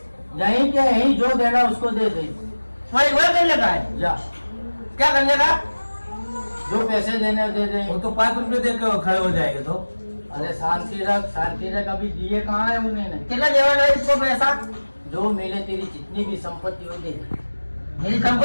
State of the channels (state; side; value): inverted; both; correlation -1.00